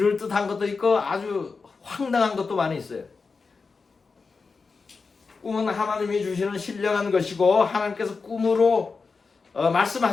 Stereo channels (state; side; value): quieter; right; 4.6 dB